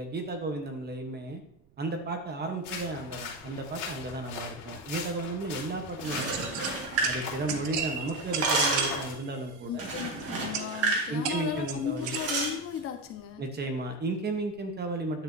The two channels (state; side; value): noise; right; rumble, 29 dB below the sound